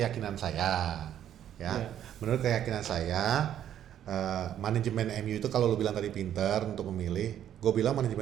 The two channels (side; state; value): left; quieter; 10.5 dB